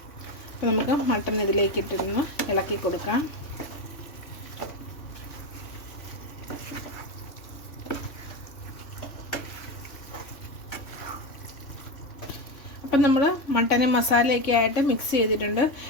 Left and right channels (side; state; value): right; late; 3.1 ms